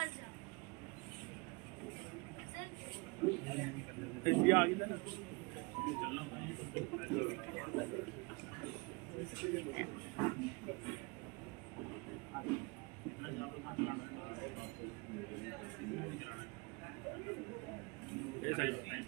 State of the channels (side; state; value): left; quieter; 28.6 dB